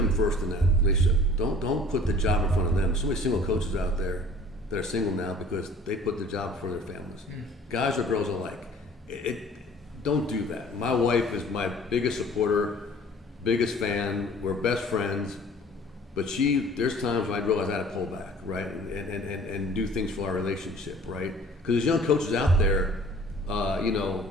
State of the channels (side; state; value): both; normal; correlation 0.50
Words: first in that relationship. Don't put the job in front of them. So many single coaches out there that are single now because they put the job before their families. Guys or girls alike. Don't do that. My wife is my biggest supporter, biggest fan. We're best friends. But there's times when I realize I had to pull back, right, and do things for our relationship, right? Because there's young coaches out there,